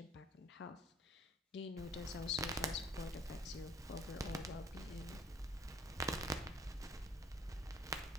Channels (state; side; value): normal; both; correlation 0.56